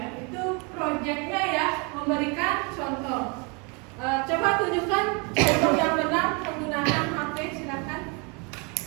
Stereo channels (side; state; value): left; quieter; 30.9 dB